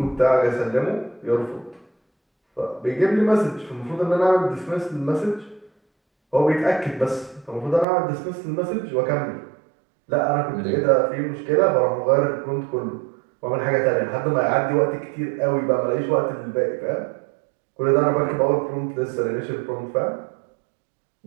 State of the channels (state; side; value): drops out; left; at 7.9 s